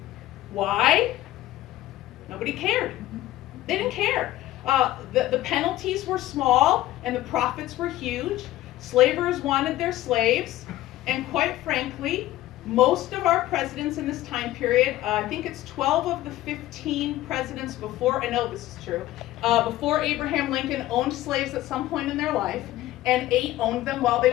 Why? Nobody cared. They didn't care. The penalties were small and the profits were huge. Slavers wanted their slaves, and quite frankly, most of our presidents in this time period, I think it's 12 of the 15 presidents before, I know this is true, before Abraham Lincoln owned slaves at some point in their life, and 8 owned them while they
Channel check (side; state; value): right; quieter; 15.3 dB